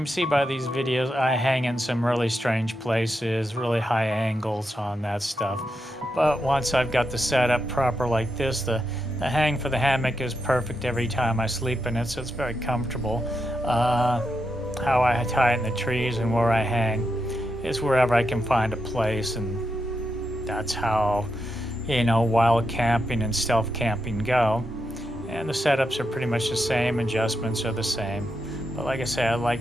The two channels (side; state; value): both; normal; correlation 0.85